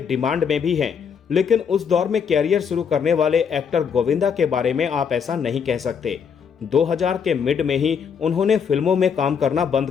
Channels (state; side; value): quieter; right; 6.8 dB